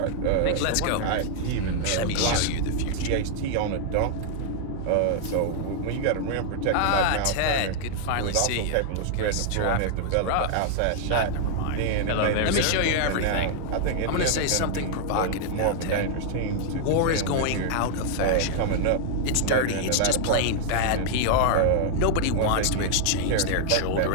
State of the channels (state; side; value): different; both; correlation 0.00